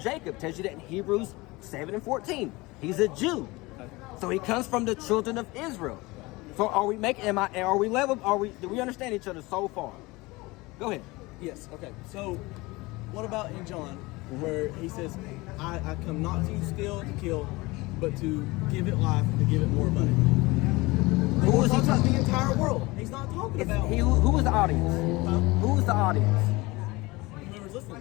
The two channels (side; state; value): right; quieter; 22.4 dB